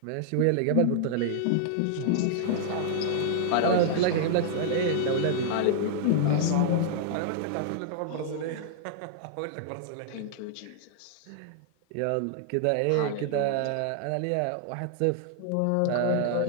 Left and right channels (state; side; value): different; both; correlation -0.01